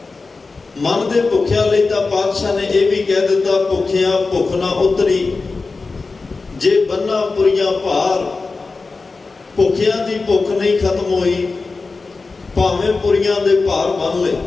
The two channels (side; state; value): right; quieter; 4.0 dB